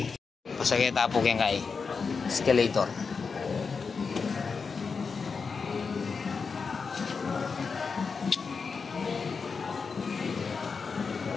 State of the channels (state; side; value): quieter; right; 5.2 dB